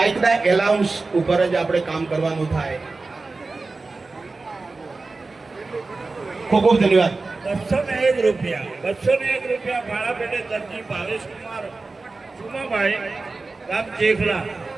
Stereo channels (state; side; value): quieter; left; 3.7 dB